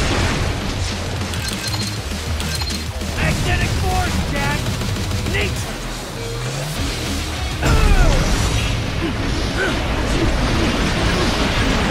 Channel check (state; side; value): identical; both; correlation 1.00